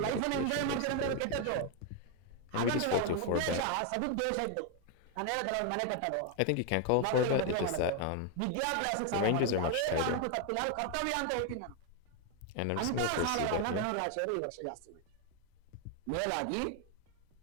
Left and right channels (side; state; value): both; different; correlation 0.01